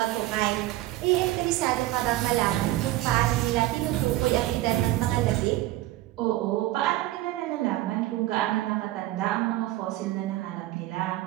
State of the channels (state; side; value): quieter; left; 16.3 dB